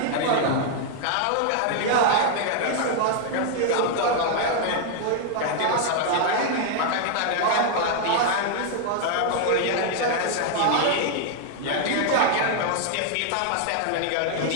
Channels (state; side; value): different; both; correlation 0.00